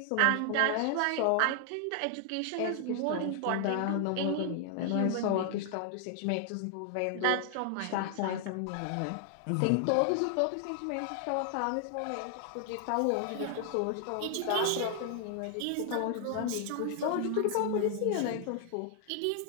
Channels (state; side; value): different; both; correlation 0.00